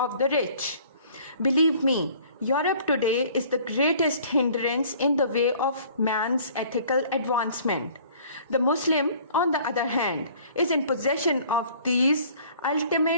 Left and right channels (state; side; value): inverted; both; correlation -0.53